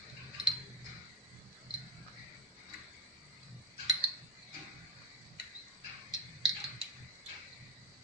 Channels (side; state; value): both; normal; correlation 0.06